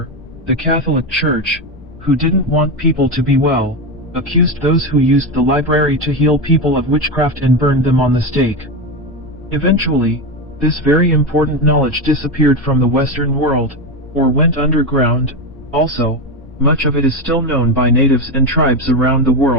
the Catholic Church, who didn't want people to be well, accused those who used the library to heal people of witchcraft and burned them on the stake. Eventually, this very important knowledge disappeared from the Western world, or went underground. Also, much of it is still known by natives and tribes around the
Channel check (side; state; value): left; noise; rumble, 20 dB below the sound